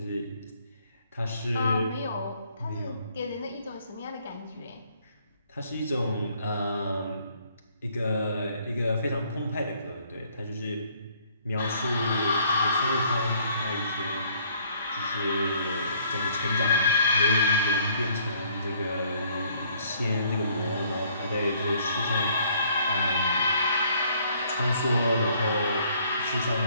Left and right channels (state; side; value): inverted; both; correlation -0.63